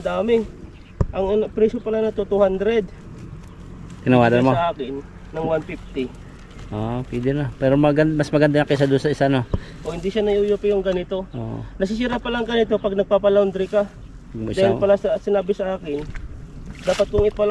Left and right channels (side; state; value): both; identical; correlation 1.00